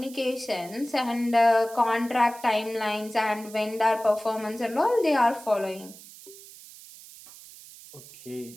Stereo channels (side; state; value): right; noise; hiss, 18 dB below the sound